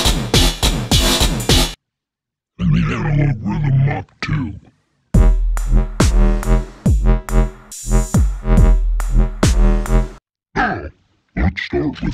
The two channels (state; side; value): identical; both; correlation 1.00